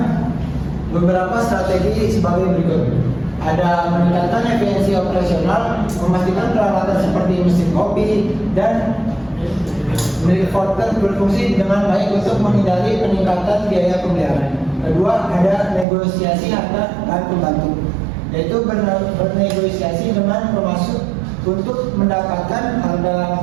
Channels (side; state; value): left; drops out; at 15.9 s